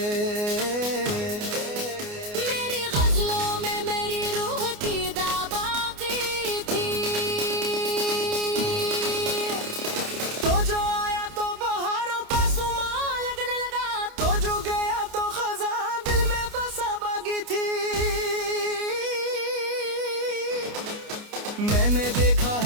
मेरी गजलों में मेरी रूह की दाबाकी थी। तो जो आया तो बहारों का सुमा लगने लगा, तो जो गया तो खजा दिल में बसा बागी थी। मैंने देखा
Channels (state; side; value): late; left; 29 ms